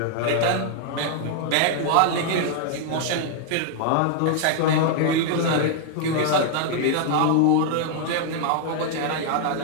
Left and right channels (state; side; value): different; both; correlation 0.00